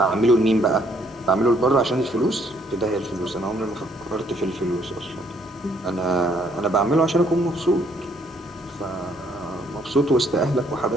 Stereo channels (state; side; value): normal; both; correlation 0.67